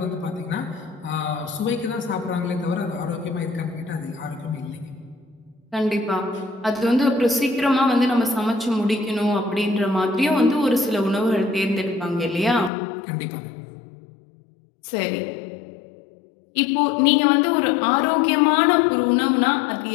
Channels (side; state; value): right; drops out; at 12.7 s